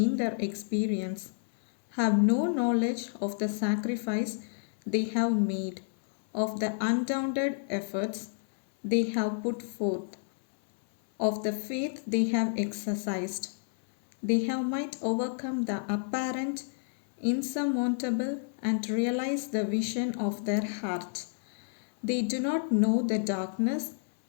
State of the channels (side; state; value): right; silent; 58 dB below the other